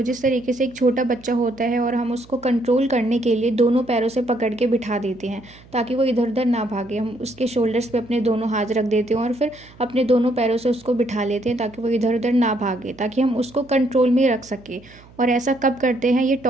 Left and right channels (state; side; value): noise; right; hum, 24 dB below the sound